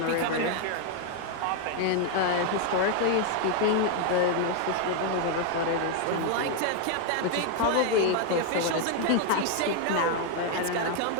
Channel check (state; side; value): different; both; correlation 0.00